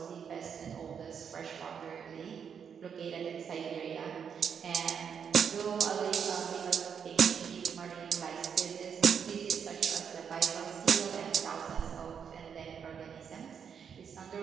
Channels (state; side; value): quieter; left; 7.3 dB